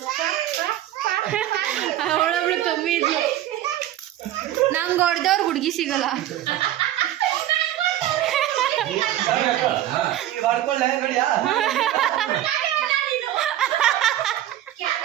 ಅವಳೊಬ್ಳು ಕಮ್ಮಿ ಇದ್ಲು. ನಂಗೆ ಹೊಡೆದವ್ರು ಹುಡುಗಿ ಸಿಗಲ್ಲ.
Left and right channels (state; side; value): quieter; left; 13.0 dB